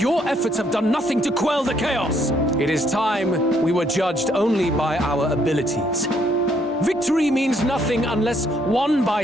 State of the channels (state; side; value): normal; both; correlation 0.70